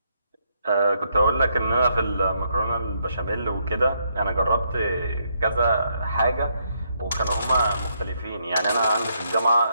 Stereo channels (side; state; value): both; inverted; correlation -0.76